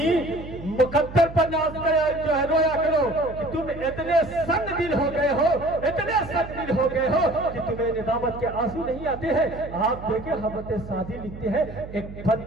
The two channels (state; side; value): noise; right; hum, 13 dB below the sound